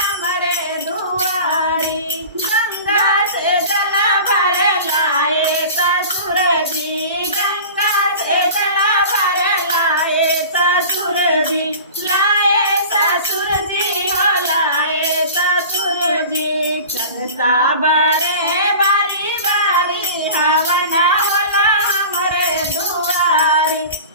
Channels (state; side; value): inverted; both; correlation -0.38